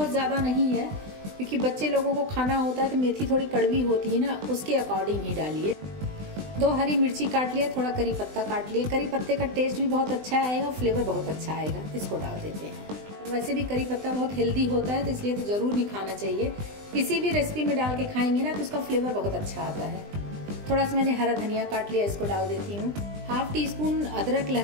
ज़्यादा नहीं है, क्योंकि बच्चे लोगों को खाना होता है तो मेथी थोड़ी कड़वी होती है ना, उसके अकॉर्डिंग ही डालिए। 2 हरी मिर्ची काट लिया, थोड़ा करी पत्ता काट लिया। करी पत्ते का टेस्ट भी बहुत अच्छा आएगा, फ्लेवर बहुत अच्छा आएगा। इसको डाल देते हैं। वैसे भी करी पत्ता बहुत हेल्दी होता है, तो इसलिए तो ज़रूर भी खाना चाहिए। किसी भी रेसिपी में डाल के खाएंगे ना तो उसका फ्लेवर बहुत अच्छा आता है। थोड़ा सा मैंने हरा धनिया काट लिया, इसको डाल देती हूँ। 1/2 टीस्पून अदरक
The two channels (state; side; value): late; left; 20 ms